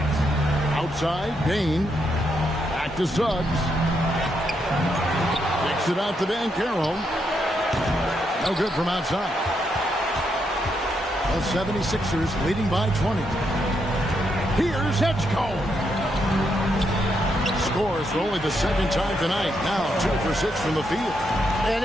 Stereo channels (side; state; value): both; normal; correlation 0.79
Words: Outside, Bane. Back to Suggs. Kicks it out to Banchero. No good from outside. The 76ers leading by 20. Here's Edgecombe. Scores for only the second time tonight. Now 2 for 6 from the field.